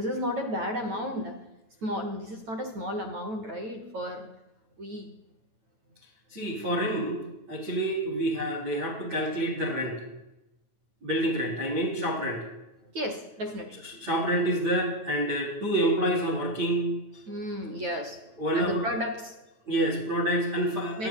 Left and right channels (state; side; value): late; left; 9.1 ms